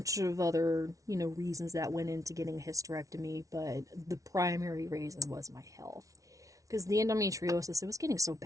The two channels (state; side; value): late; left; 0.17 ms